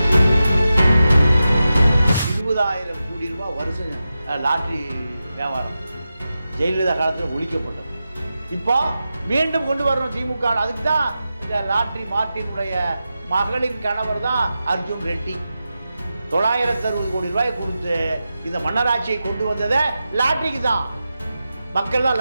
20,000 கோடி ரூபாய் வருஷம் லாட்ரி வியாபாரம் ஜெயலலிதா காலத்தில் ஒழிக்கப்பட்டது. இப்போ மீண்டும் கொண்டு வரணும் திமுக. அதுக்கு தான் இந்த லாட்ரி மார்ட்டினுடைய மகளின் கணவர் தான் அர்ஜுன் ரெட்டி 960 கோடி ரூபாய் கொடுத்து இந்த மன்னராட்சியை கொண்டு வந்ததை லாட்ரிக்கு தான். மக்கள்லாம்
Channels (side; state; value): both; inverted; correlation -0.91